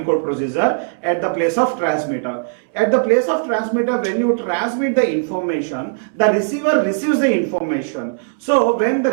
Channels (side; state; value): left; silent; 66 dB below the other